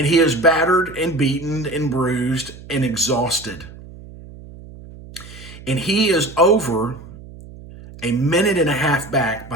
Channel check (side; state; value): right; noise; hum, 17 dB below the sound